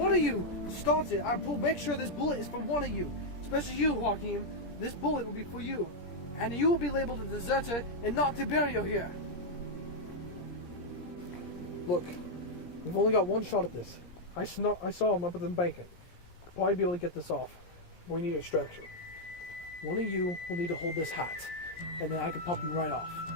of you starts it. I'll make sure this bullet is for one of you. Especially you, Joachim. This bullet will be for you. And you will be labeled a deserter and not Tiberio here. Look, we've only got one shot at this. I saw him up at the embankment. Could probably be able to get this off. We need extraction. One of you will need to hold this hat, and then I can pop him right off.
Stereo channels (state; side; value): late; right; 17 ms